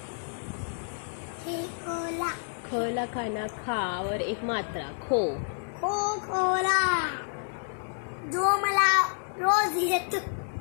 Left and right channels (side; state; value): right; silent; digital silence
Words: खेकोला, खला खाना खावर एक मात्रा खो खोला, जो मला रोज येत,